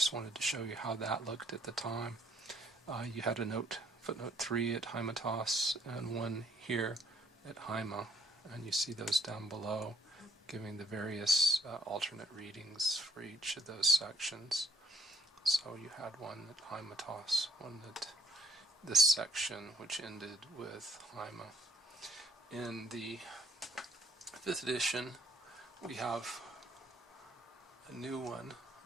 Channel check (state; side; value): normal; both; correlation 0.65